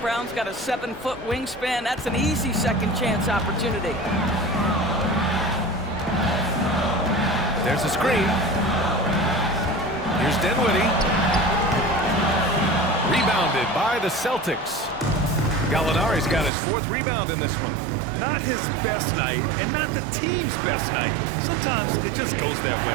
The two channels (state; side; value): drops out; left; at 16.5 s